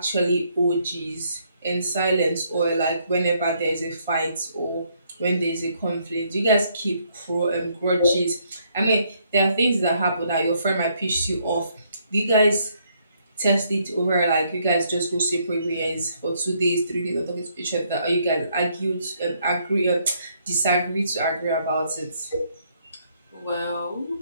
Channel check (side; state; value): both; inverted; correlation -0.71